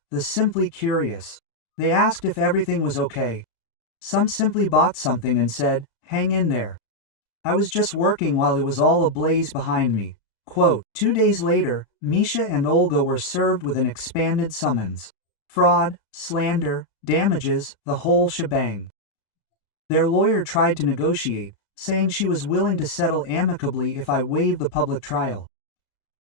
the simply curious. They asked if everything was okay. Some simply bought something and said, hang in there. I was just working while it was all ablaze behind me. Quote, 2 days later, Misha and Olga were served with an expanded summons. Fraud, slander, damages, the whole shebang. Their lawyer tried to negotiate, saying she was willing to settle amicably if I waived the public trial.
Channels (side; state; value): right; late; 34 ms